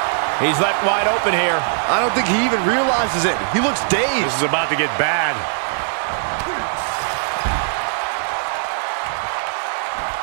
He's left wide open here. I don't think he even realizes it. He looks dazed. This is about to get bad.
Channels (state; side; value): silent; left; digital silence